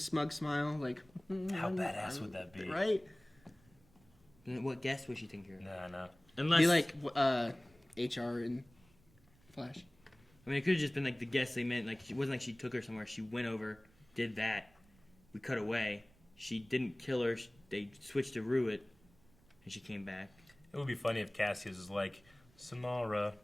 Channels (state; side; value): noise; right; rumble, 29 dB below the sound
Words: smile. Like, how badass would that be? Right? What guess was she thinking? No. Unless be like HR in Flash. I mean, it could have just been like the guess they meant. Like, it wasn't like she took her somewhere. She went over, did that. We cut away. She didn't kill her. They switched to Ruit, and she came back. It would be funny if Cassius was like, Samara,